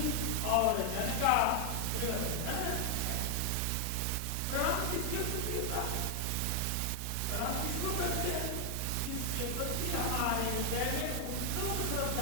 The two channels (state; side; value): different; both; correlation 0.00